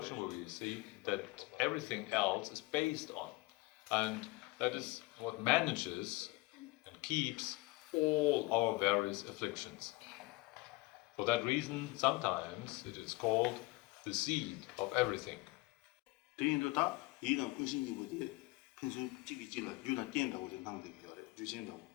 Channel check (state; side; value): quieter; right; 22.4 dB